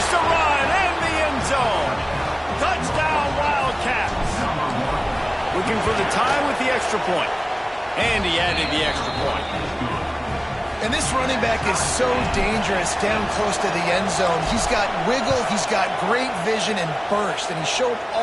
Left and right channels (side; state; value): both; identical; correlation 1.00